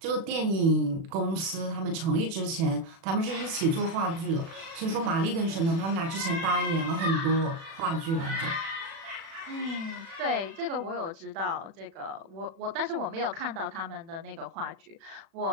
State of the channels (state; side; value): late; left; 36 ms